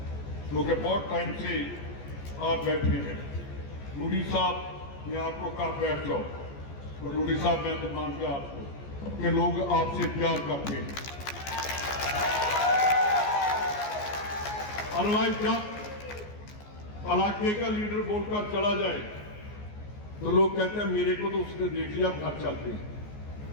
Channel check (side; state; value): right; late; 14 ms